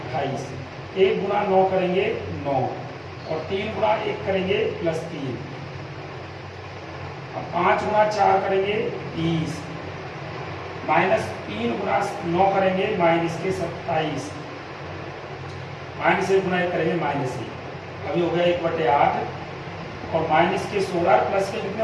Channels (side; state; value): both; identical; correlation 1.00